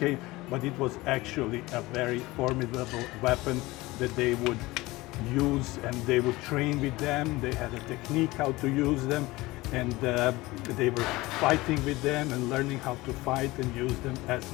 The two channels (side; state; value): right; quieter; 20.3 dB